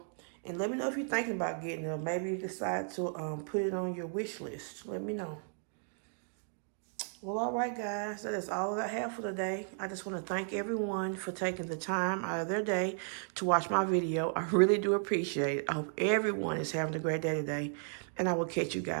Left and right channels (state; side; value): silent; left; digital silence